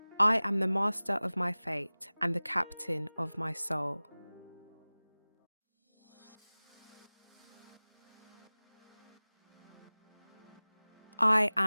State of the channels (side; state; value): both; inverted; correlation -1.00